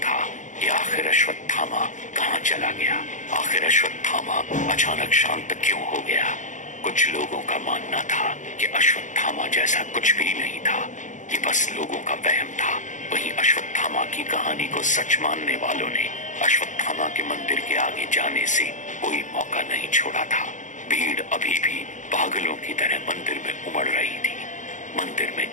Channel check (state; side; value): late; right; 0.36 ms